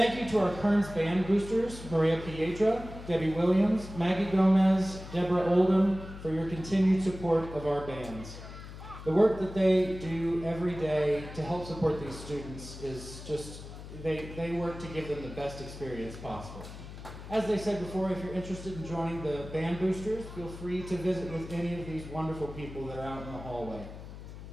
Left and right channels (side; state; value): left; noise; hum, 13 dB below the sound